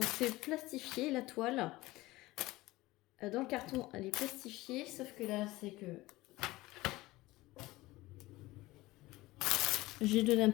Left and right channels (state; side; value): quieter; right; 19.2 dB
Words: c'est plastifié la toile. Dans le carton, elle est plastifiée, sauf que là, c'est que j'ai donné un